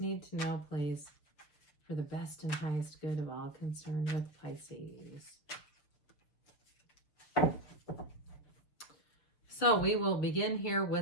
need to know, please, for the best and highest good of all concerned with Pisces? So we will begin here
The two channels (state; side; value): late; right; 6.8 ms